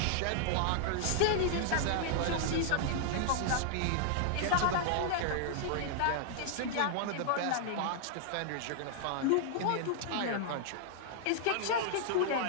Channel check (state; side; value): different; both; correlation -0.01